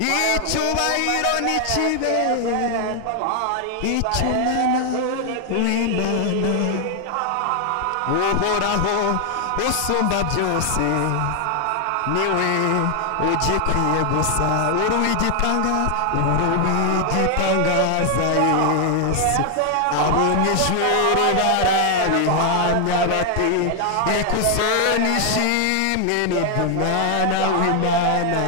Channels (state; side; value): different; both; correlation 0.00